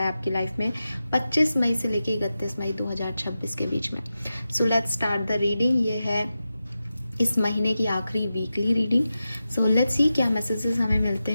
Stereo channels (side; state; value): both; inverted; correlation -0.91